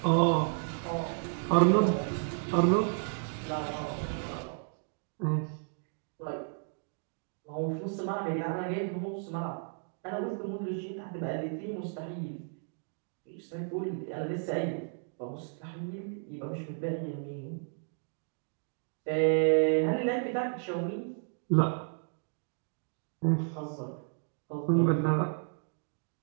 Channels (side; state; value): left; silent; 56 dB below the other